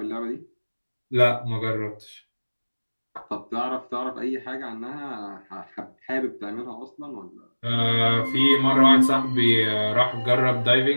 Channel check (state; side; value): inverted; both; correlation -1.00